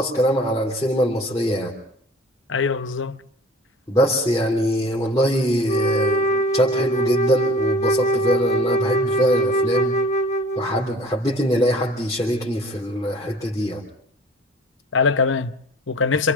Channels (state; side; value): normal; both; correlation 0.46